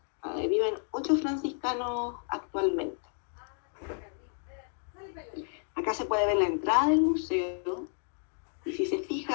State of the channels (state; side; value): silent; right; 57 dB below the other